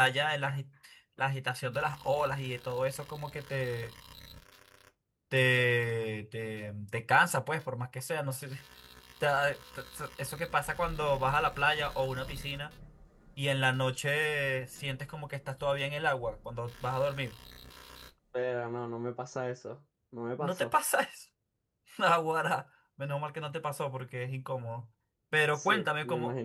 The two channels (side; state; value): both; identical; correlation 1.00